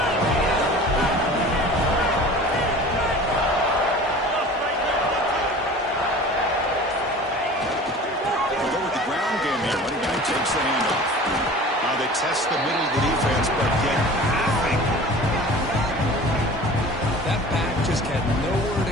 We'll go with the ground game here. Running back takes the handoff. Now they test the middle of the defense, but get nothing. That back just had nowhere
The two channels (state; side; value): normal; both; correlation 0.41